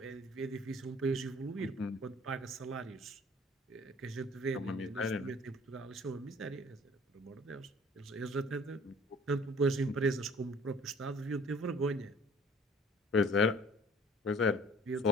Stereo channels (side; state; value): both; normal; correlation 0.52